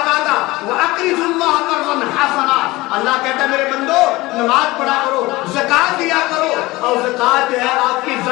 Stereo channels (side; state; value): right; quieter; 20.3 dB